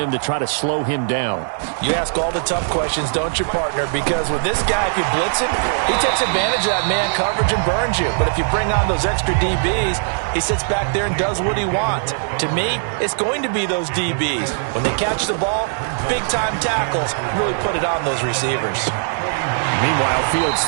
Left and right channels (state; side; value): silent; left; 66 dB below the other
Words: to try to slow him down? You ask all the tough questions, don't you, partner? Because with this guy, if you blitz him, he takes advantage of that man coverage and burns you. But if you bring on those extra DBs, he sits back there and does what he wants. To me, it's going to be those DBs. When they catch the ball, big-time tackles really put it on those receivers. Meanwhile, Fields'